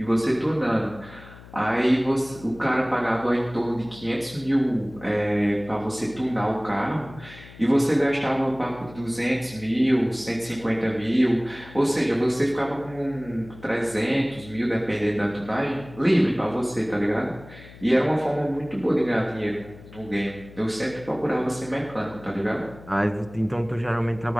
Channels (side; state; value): left; noise; hum, 19 dB below the sound